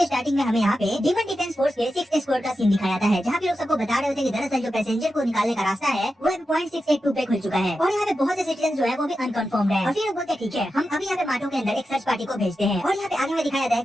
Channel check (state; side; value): normal; both; correlation 0.90